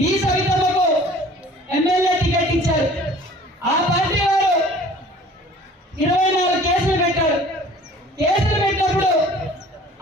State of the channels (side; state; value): both; normal; correlation 0.49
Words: ఈ సవితమ్మకు ఎమ్మెల్యే టికెట్ ఇచ్చారు. ఆ పార్టీ వారు 24 కేసులు పెట్టారు. కేసులు పెట్టినప్పుడు